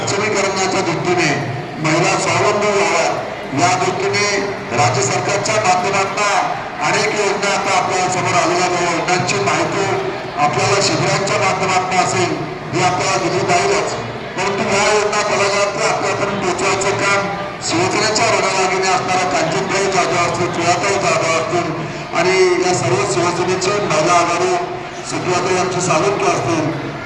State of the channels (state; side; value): identical; both; correlation 1.00